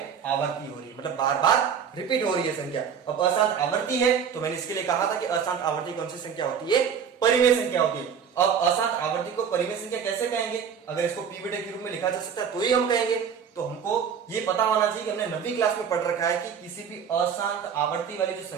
आवर्ती हो रही है, मतलब बार बार रिपीट हो रही है संख्या। अब अशांत आवर्ती है तो मैंने इसके लिए कहा था कि अशांत आवर्ती कौन सी संख्या होती है, परिमेय संख्या होती है। अब अशांत आवर्ती को परिमेय संख्या कैसे कहेंगे, अगर इसको p बटे q रूप में लिखा जा सकता है तो ही हम कहेंगे। तो हमको ये पता होना चाहिए कि हमने 9वीं क्लास में पढ़ रखा है कि किसी भी अशांत आवर्ती वाली जो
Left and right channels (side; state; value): left; quieter; 7.3 dB